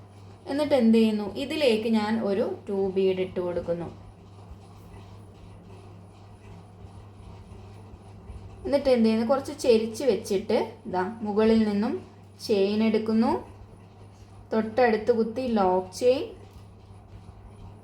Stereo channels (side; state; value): both; identical; correlation 1.00